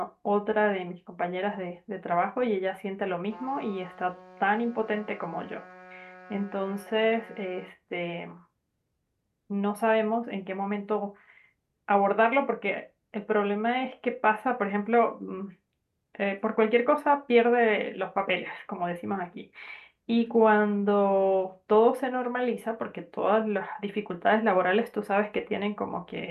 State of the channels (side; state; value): both; identical; correlation 1.00